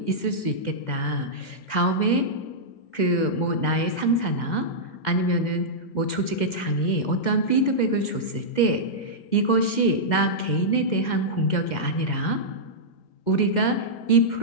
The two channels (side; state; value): right; late; 2.1 ms